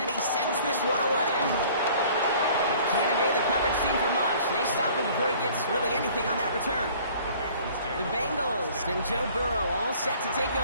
he sends this one away. He can't evade the coverage team for much. They stop him before he gets really anything on that return. The Bengals and Joe Burrow all set to take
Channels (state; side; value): inverted; both; correlation -0.52